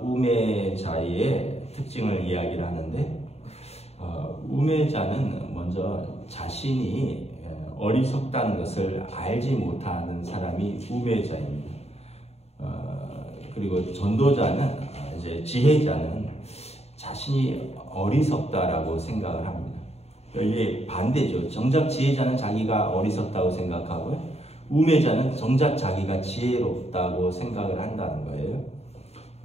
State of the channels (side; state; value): right; late; 0.30 ms